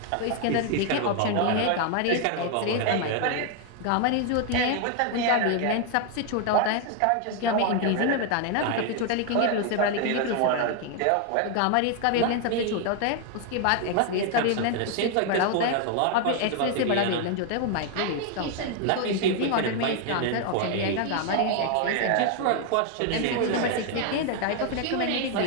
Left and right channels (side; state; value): both; different; correlation 0.00